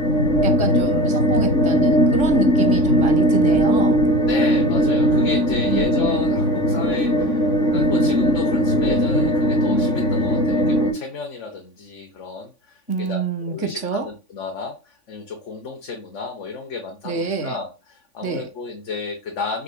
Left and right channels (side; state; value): right; late; 3.5 ms